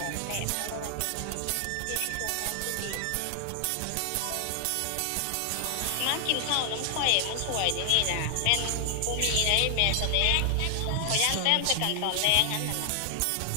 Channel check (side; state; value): both; different; correlation 0.00